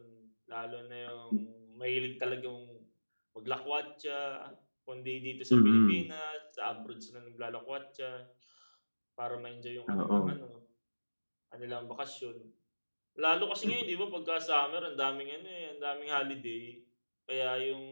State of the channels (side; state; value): both; inverted; correlation -1.00